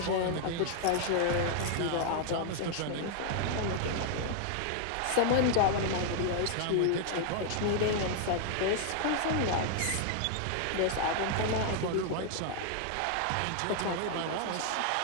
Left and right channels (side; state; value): both; different; correlation 0.00